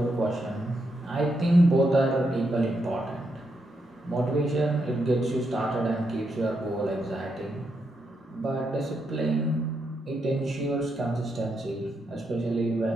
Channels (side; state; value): both; normal; correlation 0.81